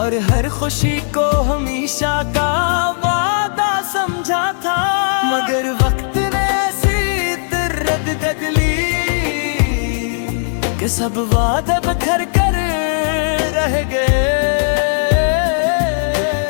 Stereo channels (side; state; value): right; silent; 66 dB below the other